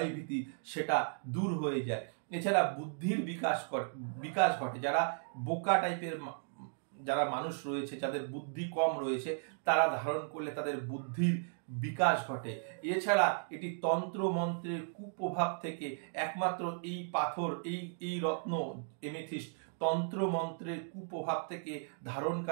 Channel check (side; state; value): left; silent; digital silence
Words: সেটা দূর হয়ে যায়। এছাড়া বুদ্ধির বিকাশ ঘটে। যারা বোকা টাইপের যারা মানুষ রয়েছে, যাদের বুদ্ধি কম রয়েছে, তারা ধারণ করলে তাদের বুদ্ধির বিকাশ ঘটে। এছাড়া এটি তন্ত্র মন্ত্রের কুপ্রভাব থেকে একমাত্র এই পাথর, এই রত্ন এমেথিস্ট তন্ত্র মন্ত্রের কুপ্রভাব থেকে